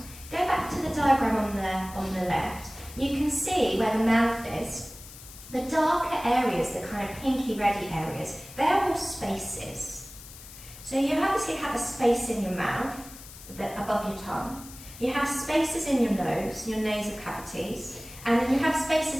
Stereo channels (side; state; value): left; noise; hiss, 16 dB below the sound